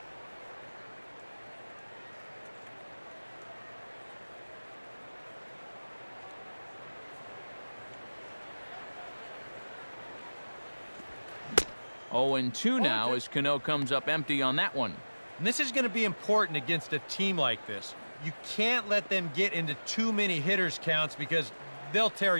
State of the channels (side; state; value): both; inverted; correlation -1.00